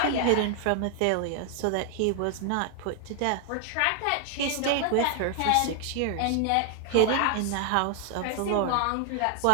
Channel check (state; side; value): different; both; correlation 0.00